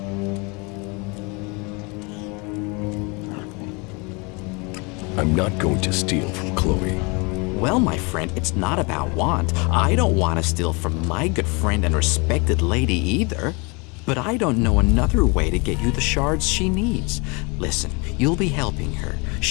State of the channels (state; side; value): quieter; right; 29.7 dB